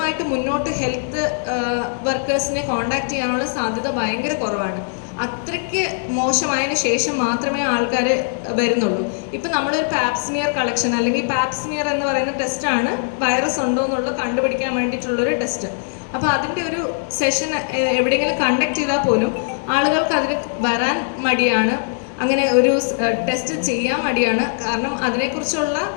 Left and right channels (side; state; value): right; silent; digital silence